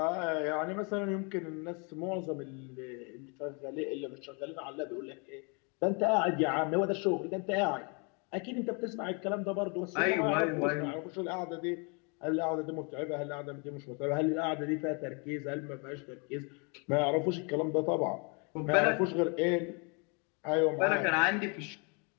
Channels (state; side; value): quieter; right; 34.1 dB